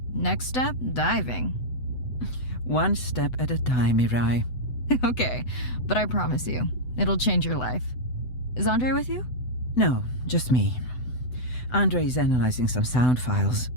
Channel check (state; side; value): late; right; 8.0 ms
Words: Next step, diving. One step at a time, Mirai. Okay, but I promise you, it'll change your life. Is Andre with you? No, just me. Andre is analyzing some sound files